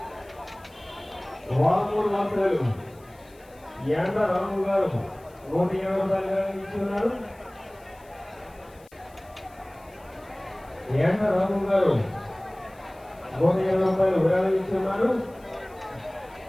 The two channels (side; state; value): left; noise; hiss, 28 dB below the sound